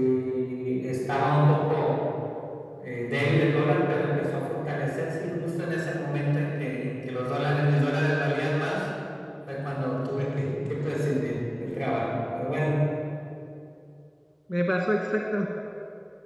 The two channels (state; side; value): identical; both; correlation 1.00